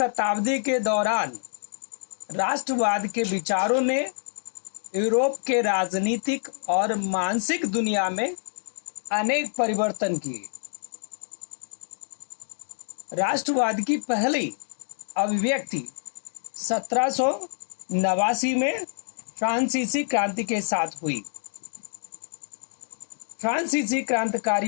के दौरान राष्ट्रवाद के विचारों ने यूरोप के राजनीतिक और मानसिक दुनिया में अनेक परिवर्तन किए। राष्ट्रवाद की पहली अभिव्यक्ति 1789 में फ्रांसीसी क्रांति के साथ हुई। फ्रांसीसी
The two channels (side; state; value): right; silent; digital silence